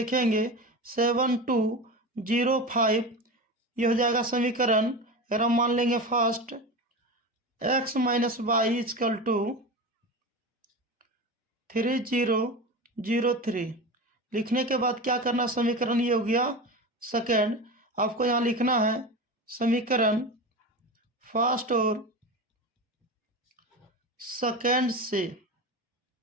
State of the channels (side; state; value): both; normal; correlation 0.26